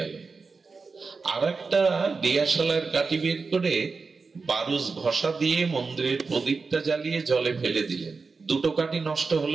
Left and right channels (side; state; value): left; quieter; 4.5 dB